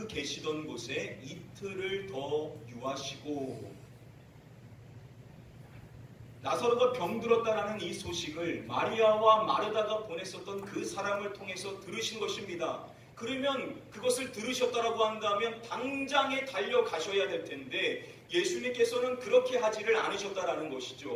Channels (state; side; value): identical; both; correlation 1.00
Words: 계시던 곳에 이틀을 더 유하시고, 나사로가 병들었다라는 이 소식을 마리아와 마르다가 보냈었던 그 사람을 통해서 들으신 것입니다. 그러면 그것을 들으셨다라고 한다면 당장에 달려가셔야 될 텐데 예수님께서는 그렇게 하지를 않으셨다라는